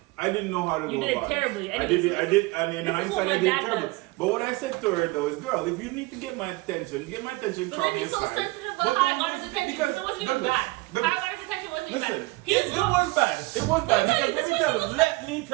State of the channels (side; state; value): left; quieter; 22.8 dB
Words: I didn't know how to go about it. You did it terribly. I did, and in hindsight, I did it terribly. But what I said to her though is, girl, if you need to get my attention, call me aside. But then he's so sensitive about how I got his attention because it wasn't even bad. How I got his attention wasn't even bad. It was bad. It was bad. Because let me